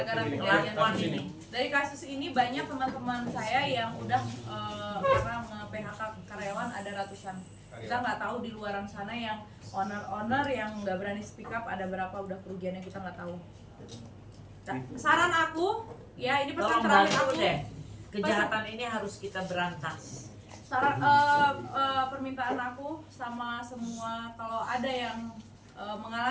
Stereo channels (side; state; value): both; identical; correlation 1.00